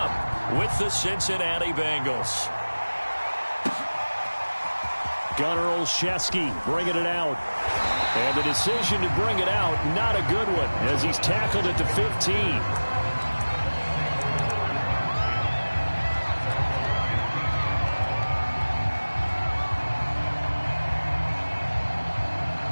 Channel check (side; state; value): both; inverted; correlation -1.00